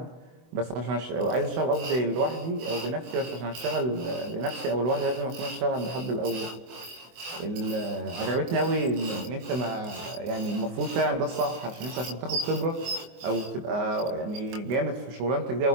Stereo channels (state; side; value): late; left; 24 ms